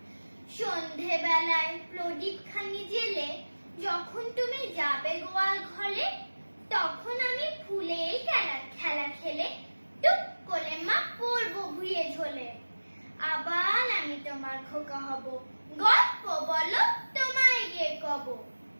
সন্ধে বেলায় প্রদীপ খানি জেলে যখন তুমি যাবে গোয়াল ঘরে, তখন আমি ফুলের খেলা খেলে টুক করে মা পড়বো ভুঁয়ে ঝোলে। আবার আমি তোমার খোকা হব, গল্প বলো তোমায় গিয়ে কব।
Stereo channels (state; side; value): inverted; both; correlation -1.00